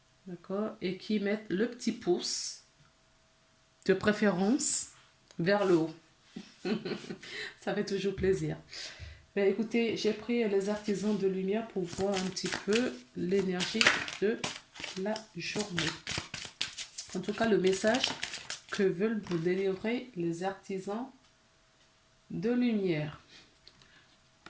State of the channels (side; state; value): both; identical; correlation 1.00